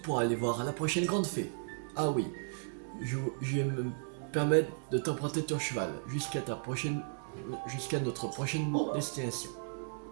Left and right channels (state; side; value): silent; left; digital silence